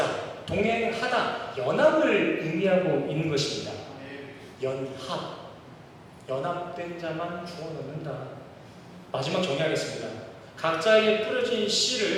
동행하다, 연합을 의미하고 있는 것입니다. 연합된 자만 구원 얻는다. 마지막 정리하겠습니다. 각자에게 뿌려진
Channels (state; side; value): identical; both; correlation 1.00